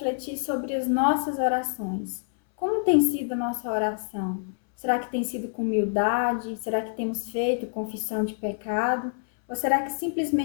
sobre as nossas orações. Como tem sido a nossa oração? Será que tem sido com humildade? Será que temos feito confissão de pecado? Ou será que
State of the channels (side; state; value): right; silent; 60 dB below the other